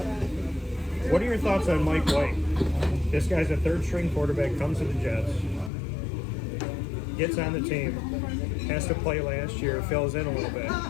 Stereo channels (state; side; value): drops out; right; at 5.7 s